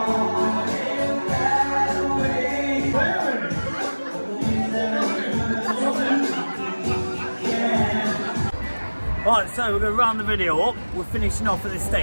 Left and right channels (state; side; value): inverted; both; correlation -1.00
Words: Right, so we're going to round the video up. We're finishing off at this